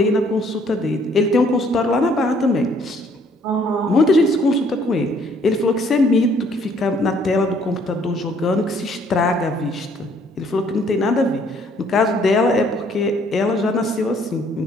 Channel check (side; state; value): both; normal; correlation 0.63